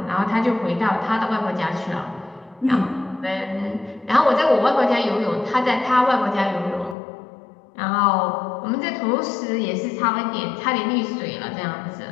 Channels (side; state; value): right; drops out; at 7.0 s